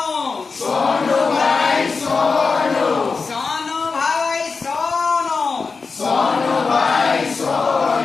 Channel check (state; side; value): quieter; right; 4.6 dB